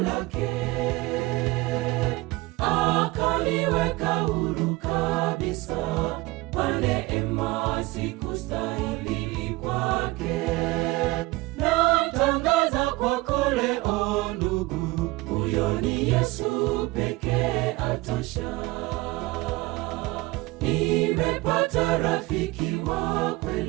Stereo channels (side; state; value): left; quieter; 21.3 dB